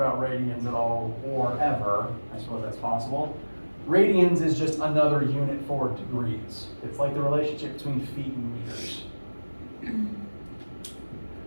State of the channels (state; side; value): inverted; both; correlation -1.00